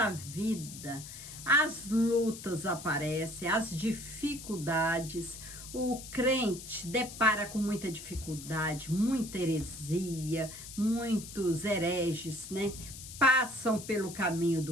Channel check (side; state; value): left; noise; hiss, 12 dB below the sound